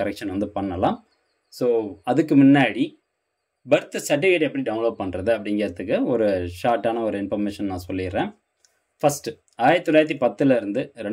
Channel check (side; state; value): both; identical; correlation 1.00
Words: கரெக்ஷன் வந்து பண்ணலாம். ஸோ அதுக்கு முன்னாடி பர்த் சர்டிஃபிகேட் எப்படி டவுன்லோட் பண்ணுறது அப்படிங்கிறதுக்கு ஒரு ஷார்ட்டான ஒரு இன்ஃபர்மேஷன் நான் சொல்லிடுறேன். ஃபஸ்ட்டு 1910 இருந்து